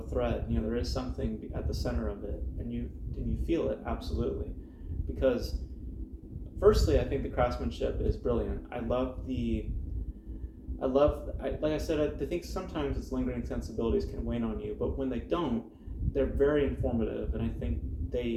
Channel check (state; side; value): identical; both; correlation 1.00